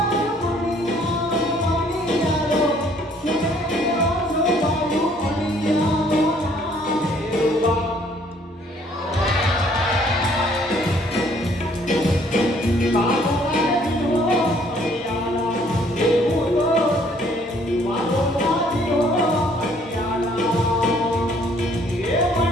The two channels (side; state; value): both; normal; correlation 0.62